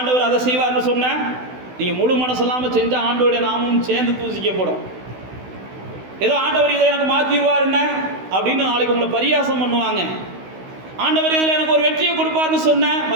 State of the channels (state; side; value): late; left; 16 ms